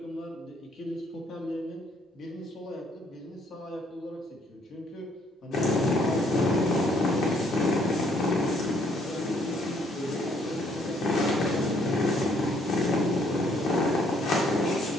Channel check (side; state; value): both; normal; correlation 0.66